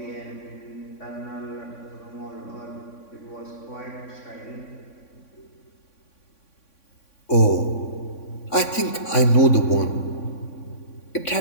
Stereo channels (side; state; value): right; late; 3.6 ms